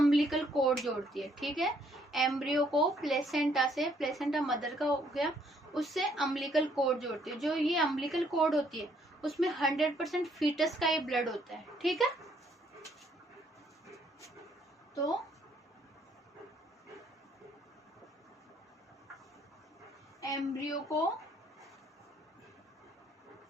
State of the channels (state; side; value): normal; both; correlation 0.67